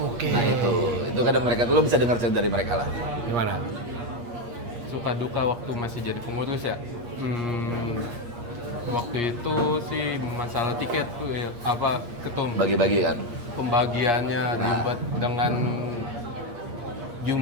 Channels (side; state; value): left; late; 8.5 ms